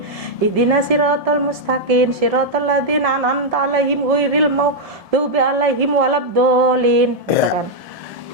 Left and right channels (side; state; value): left; late; 1.7 ms